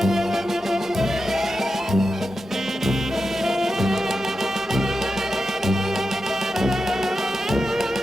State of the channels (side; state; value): both; normal; correlation 0.89